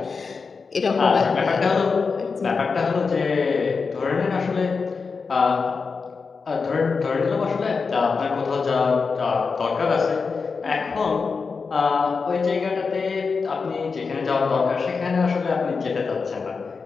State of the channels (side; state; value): right; quieter; 4.9 dB